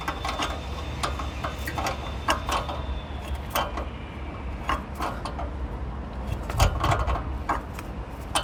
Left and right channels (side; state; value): both; identical; correlation 1.00